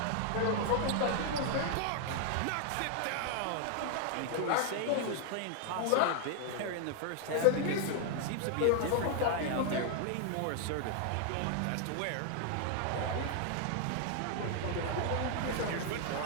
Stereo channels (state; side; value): different; both; correlation 0.00